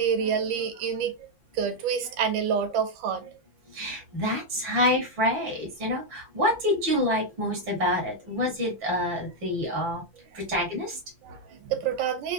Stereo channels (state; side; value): late; left; 5.8 ms